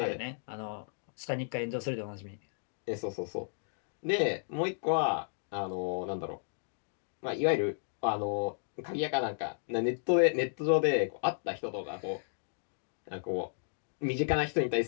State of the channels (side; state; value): right; silent; digital silence